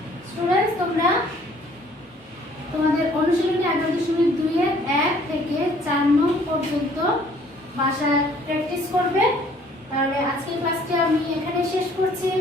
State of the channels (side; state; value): both; normal; correlation 0.58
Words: স্টুডেন্টস, তোমরা তোমাদের অনুশীলনী 11.2 এর 1 থেকে 4 নং পর্যন্ত বাসায় প্র্যাকটিস করবে। তাহলে আজকের ক্লাসটি আমি এখানে শেষ করছি।